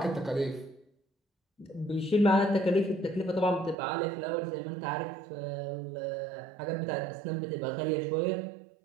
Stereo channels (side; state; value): left; drops out; at 3.8 s